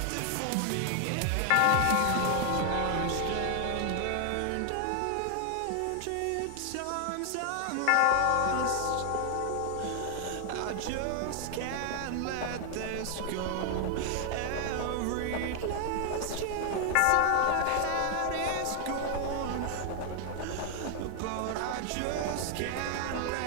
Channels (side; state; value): both; different; correlation 0.00